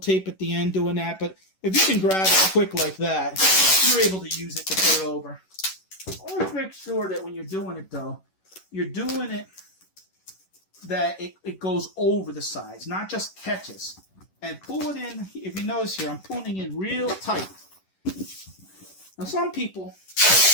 at the end doing that, but if you can grab it quick like that, you're able to use it to put it over. Always make sure that when you're doing it, though, you're doing it that it goes over the sides, not just catches. And pull it in, if you notice here, I'm pulling it in real tight. Now some people,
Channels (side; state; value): right; late; 11 ms